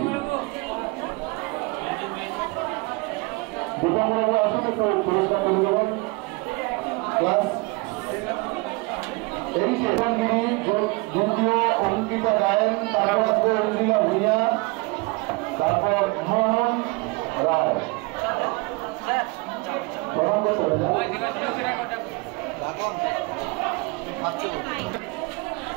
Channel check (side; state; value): left; quieter; 26.6 dB